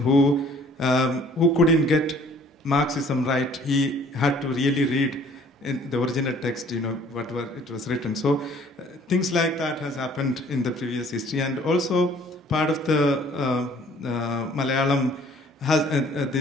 who couldn't get Marxism right. He had to really read in the original text, whatever it was written. So things like that has happened in the previous history. And also part of the Malayalam has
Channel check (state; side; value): normal; both; correlation 0.55